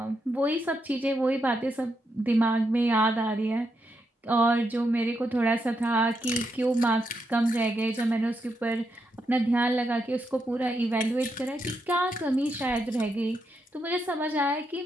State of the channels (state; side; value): normal; both; correlation 0.82